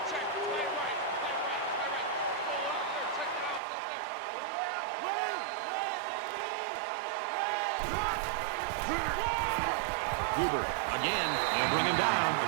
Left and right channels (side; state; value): left; drops out; at 3.6 s